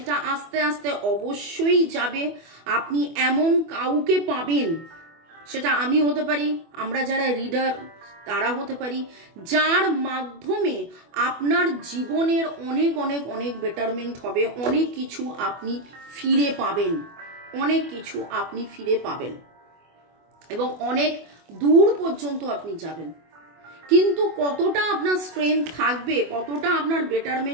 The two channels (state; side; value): late; left; 24 ms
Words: আস্তে আস্তে অবশ্যই যাবে। আপনি এমন কাউকে পাবেন, সেটা আমি হতে পারি, আমরা যারা রিডার তারা হতে পারি, যার মাধ্যমে আপনার জীবনের অনেক অনেক অনেক বেটারমেন্ট হবে, অনেক কিছু আপনি ফিরে পাবেন, অনেক কিছু আপনি ফিরে পাবেন এবং অনেক দূর পর্যন্ত আপনি যাবেন। কিন্তু কতটা আপনার স্ট্রেংথ থাকবে, কতটা আপনার